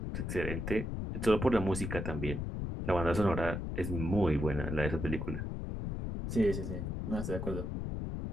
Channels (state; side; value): noise; left; rumble, 4 dB below the sound